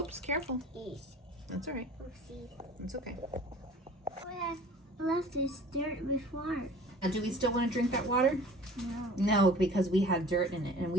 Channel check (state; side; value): normal; both; correlation 0.45